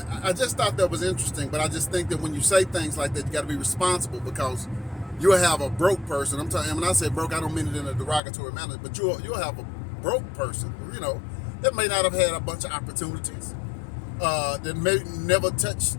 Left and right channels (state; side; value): drops out; right; at 8.2 s